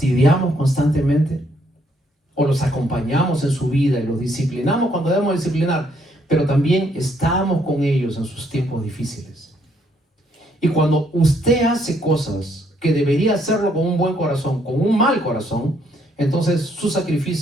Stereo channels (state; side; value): normal; both; correlation 0.70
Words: constantemente? ¿O los acompañamos en su vida y los disciplinamos cuando debemos disciplinar? Pero también estamos con ellos en sus tiempos difíciles. Y cuando usted hace cosas que debería hacerlo con un buen corazón, con un mal corazón, entonces su